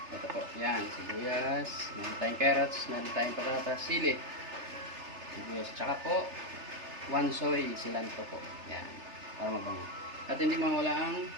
Ito po, yan, sibuyas, meron tayong carrots, meron tayong patatas, sili, sibuyas, tsaka po 1 soy cilantro po. Yan, para mabango. At hindi mawala ang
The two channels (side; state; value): left; late; 3.3 ms